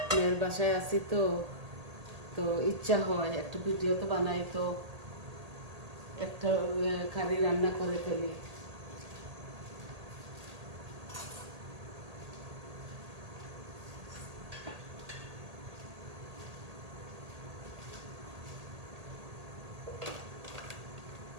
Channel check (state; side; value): late; left; 1.8 ms